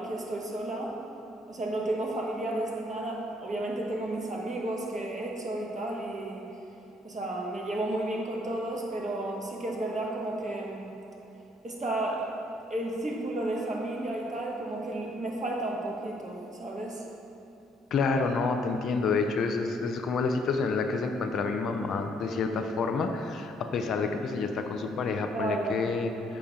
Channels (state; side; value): normal; both; correlation 0.67